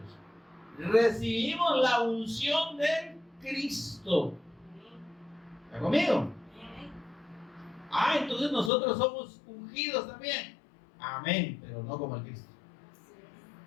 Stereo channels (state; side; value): drops out; right; at 8.7 s